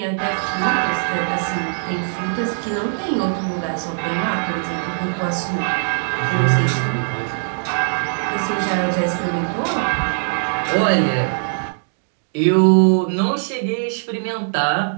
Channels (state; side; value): silent; left; digital silence